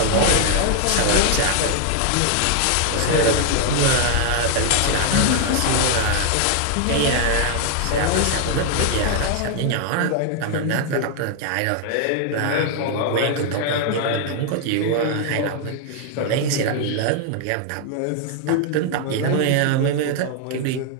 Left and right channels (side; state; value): both; different; correlation 0.00